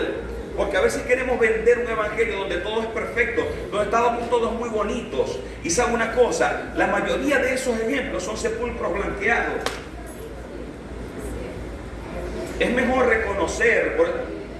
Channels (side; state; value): both; identical; correlation 1.00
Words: porque a veces queremos vender un evangelio donde todo es perfecto, donde estamos todos muy bonitos. Y sabe una cosa, la mayoría de esos ejemplos son sepulcros blanqueados. Es mejor reconocer,